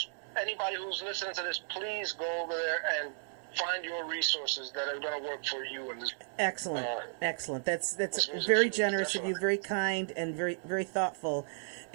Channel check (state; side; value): silent; left; digital silence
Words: anybody who's listening to this, please go over there and find your resources that are going to work for you. Excellent. That's very generous of you, very kind, and very, very thoughtful.